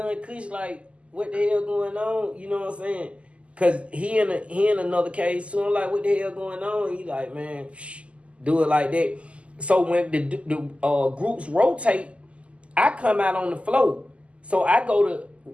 Kush, like, what the hell going on? You know what I'm saying? Cause he in another case, so I'm like, what the hell going on? He like, man, do it like that. So when the groups rotate, I come out on the floor. So I go to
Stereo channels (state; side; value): late; left; 0.059 ms